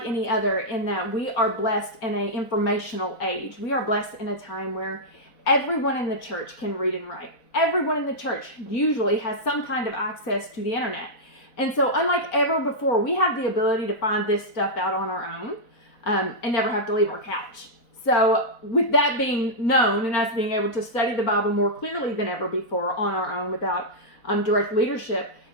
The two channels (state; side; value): late; right; 4.1 ms